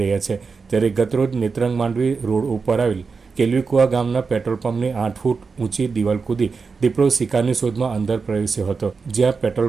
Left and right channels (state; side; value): quieter; left; 4.9 dB